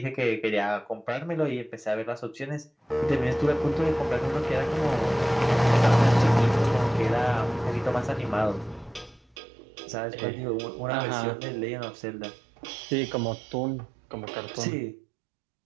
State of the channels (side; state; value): left; drops out; at 9.3 s